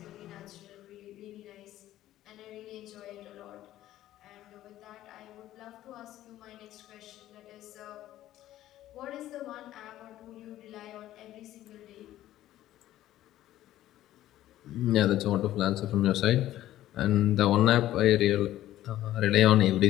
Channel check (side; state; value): right; quieter; 13.8 dB